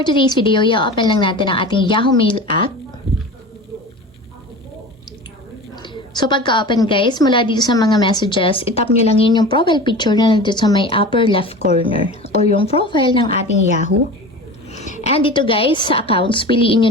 today's video, i-open lang natin ang ating Yahoo Mail app. So pagka-open guys, mula dito sa mga messages, itap nyo lang yun yung profile picture na nandito sa may upper left corner or yung profile ng ating Yahoo. And dito guys, sa accounts, piliin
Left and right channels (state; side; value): normal; both; correlation 0.34